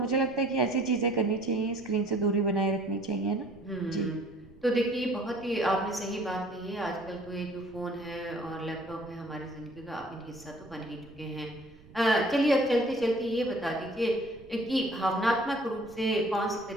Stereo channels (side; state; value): right; noise; rumble, 22 dB below the sound